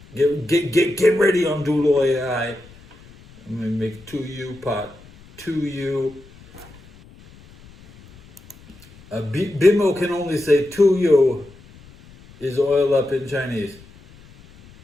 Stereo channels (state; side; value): noise; left; rumble, 24 dB below the sound